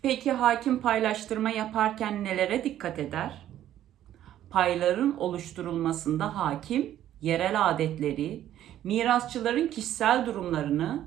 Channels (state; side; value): quieter; left; 12.0 dB